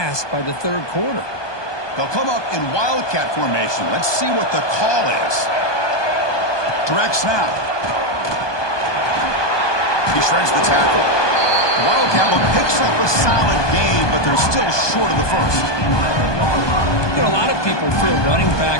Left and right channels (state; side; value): late; right; 1.2 ms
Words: by the 3rd quarter. They'll come up in wildcat formation. Let's see what the call is. Direct snap. He shreds the tackle. The Wildcat one picks up a solid gain, but they're still short of the first. You know, a lot of people feel running